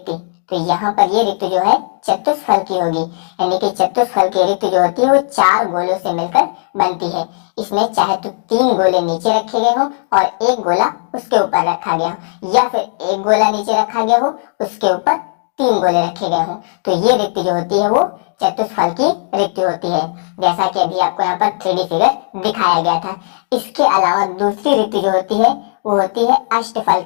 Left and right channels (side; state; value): right; silent; digital silence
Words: तो यहाँ पर ये रिक्ति जो है चतुष्फल की होगी, यानी कि चतुष्फल की रिक्ति जो होती है वो 4 गोलों से मिलकर बनती है। इसमें चाहे तो 3 गोले नीचे रखे गए हो और एक गोला उसके ऊपर रखा गया हो, या फिर एक गोला नीचे रखा गया हो उसके ऊपर 3 गोले रखे गए हो। तो ये रिक्ति जो होती है वो चतुष्फल की रिक्ति होती है, जैसा कि अभी आपको यहाँ पर 3D फिगर दिखाया गया था। इसके अलावा दूसरी रिक्ति जो होती है वो होती है अष्टफल